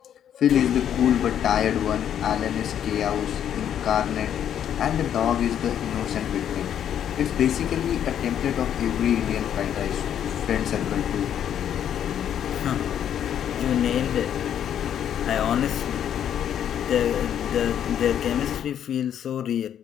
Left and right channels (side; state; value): right; quieter; 9.7 dB